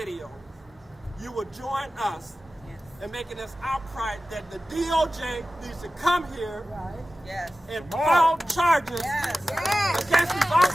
you will join us in making this outcry that the DOJ needs to come here and file charges against these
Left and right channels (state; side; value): normal; both; correlation 0.95